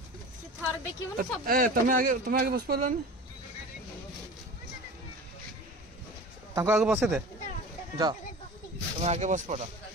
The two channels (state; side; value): normal; both; correlation 0.36